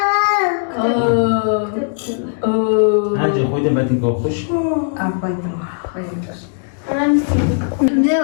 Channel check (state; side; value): silent; right; digital silence